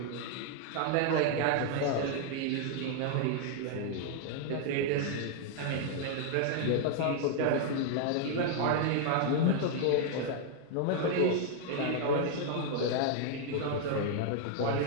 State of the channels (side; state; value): both; different; correlation 0.00